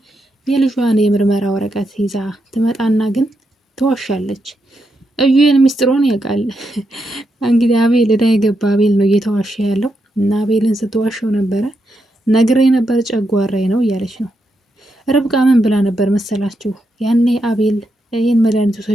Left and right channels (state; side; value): normal; both; correlation 0.83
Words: የልጇን የምርመራ ወረቀት ይዛ ትመጣና ግን ትዋሻለች። እዩን ሚስጥሩን ያውቃል። እንግዲህ አቤል እዳ የገባ አቤል ነው እየተዋሸ ያለው እና አቤልን ስትዋሸው ነበረ። ነግሬ ነበር ጨጓራዬ ነው እያለች ነው። ርብቃ ምን ብላ ነበር መሰላችሁ? ያኔ አቤል ይህን መድኃኒት